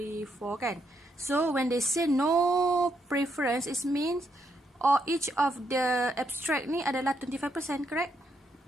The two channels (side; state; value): both; normal; correlation 0.77